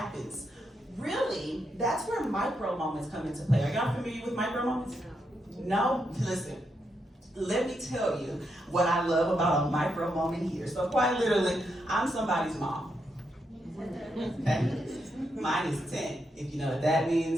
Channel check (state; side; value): normal; both; correlation 0.82